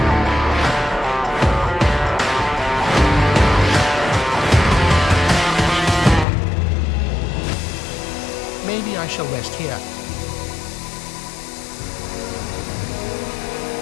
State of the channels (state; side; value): drops out; right; at 6.2 s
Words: Maybe I shall rest here.